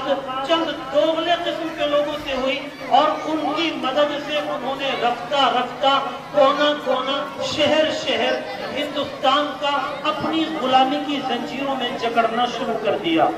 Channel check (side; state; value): both; identical; correlation 1.00